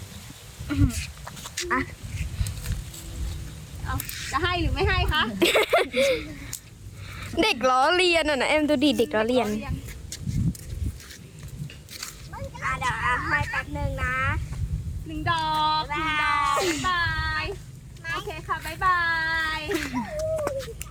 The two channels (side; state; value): both; identical; correlation 1.00